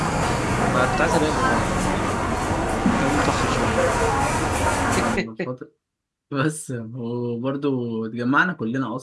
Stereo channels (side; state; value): both; identical; correlation 1.00